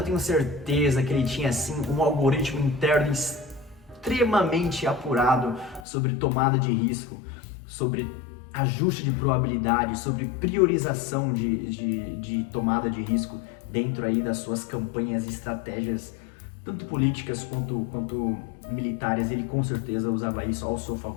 tenho certeza que ele tinha assim um algoritmo interno extremamente apurado sobre tomada de risco, sobre ajuste de probabilidade, sobre priorização de tomada de risco dentro aí das suas campanhas e estratégias, tanto políticas quanto militares. Ele com certeza usava isso ao seu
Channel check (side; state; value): right; drops out; at 5.9 s